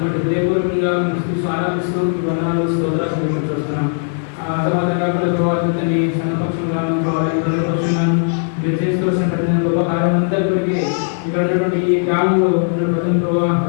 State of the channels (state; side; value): silent; right; 62 dB below the other